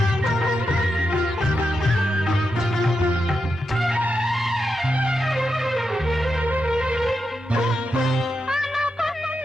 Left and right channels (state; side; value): normal; both; correlation 0.86